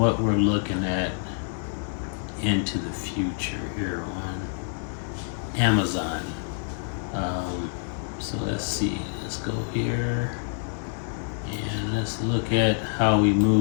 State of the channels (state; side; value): silent; right; 60 dB below the other